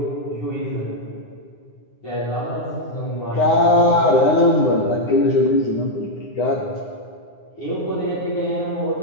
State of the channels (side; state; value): right; late; 9.7 ms